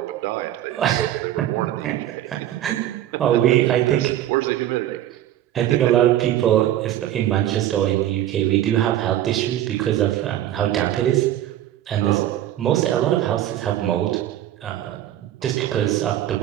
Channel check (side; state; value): left; quieter; 12.6 dB